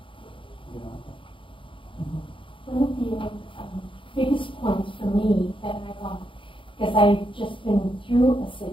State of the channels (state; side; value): late; right; 0.25 ms